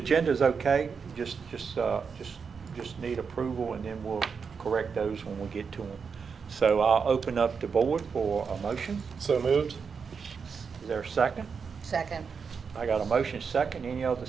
is okay. Just need approval, and then we'll correct those when we get to them. So I'll open up the board for a motion. So moved. Is there a second? Second. I got a motion second. Any other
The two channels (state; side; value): quieter; left; 5.8 dB